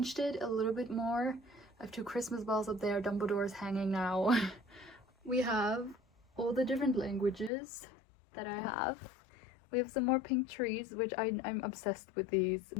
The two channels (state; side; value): drops out; right; at 7.5 s